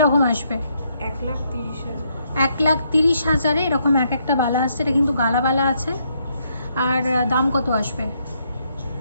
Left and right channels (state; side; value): inverted; both; correlation -0.75